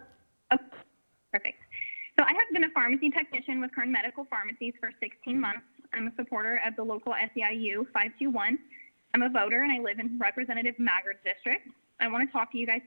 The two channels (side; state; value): both; inverted; correlation -1.00